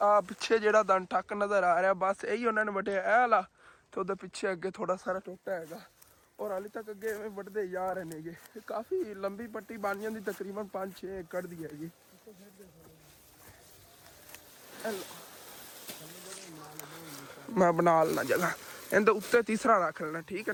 पिछे जेड़ा दन टक नज़र आ रहा बस यही उन्होंने वटिया ए वाला तो उधर पिछे अगे थोड़ा सारा टोटा है और हाली तक अगे वटते जा रहे हैं। काफ़ी लंबी पट्टी बन जाती तकरीबन 5-6 एकड़ दी हैगी। मैं बना लेना जगह इनके उत्ते तीसरा रख लेना ठीक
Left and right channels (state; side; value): identical; both; correlation 1.00